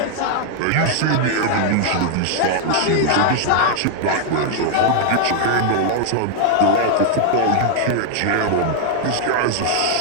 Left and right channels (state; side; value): different; both; correlation 0.00